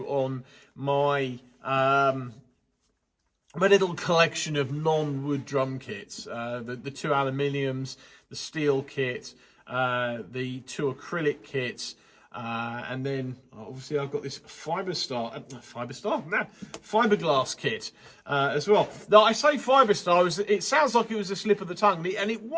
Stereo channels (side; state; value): both; identical; correlation 1.00